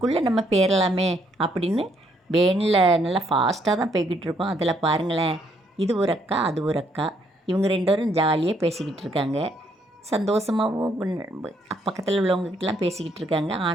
நம்ம பேரலாமே அப்படின்னு வேனில் நல்லா ஃபாஸ்ட்டாக தான் போய்கிட்டு இருக்கோம். அதில் பாருங்களேன், இது ஒரு அக்கா, அது ஒரு அக்கா. இவங்க 2 பேரும் ஜாலியாக பேசிக்கிட்டு இருக்காங்க. சந்தோஷமாகவும் பக்கத்தில் உள்ளவங்ககிட்டலாம் பேசிக்கிட்டு இருக்காங்க.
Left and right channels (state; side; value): normal; both; correlation 0.71